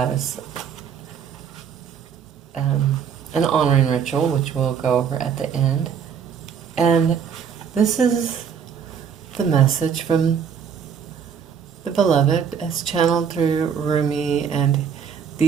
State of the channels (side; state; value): left; quieter; 7.3 dB